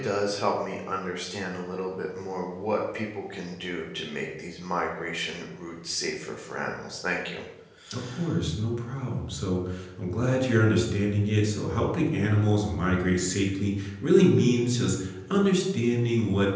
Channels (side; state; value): both; identical; correlation 1.00